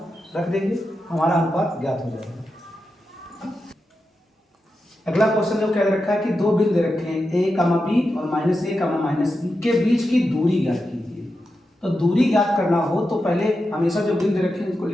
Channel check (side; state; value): both; normal; correlation 0.89